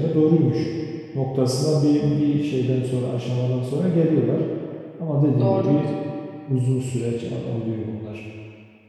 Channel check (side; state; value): both; identical; correlation 1.00